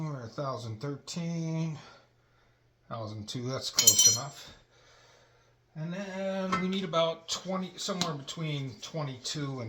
1,013, 1,002. That's close enough. And then we need about 20, somewhere between 22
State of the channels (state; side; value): identical; both; correlation 1.00